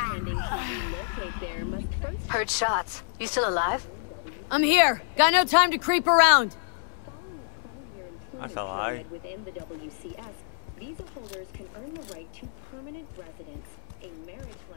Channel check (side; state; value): right; silent; digital silence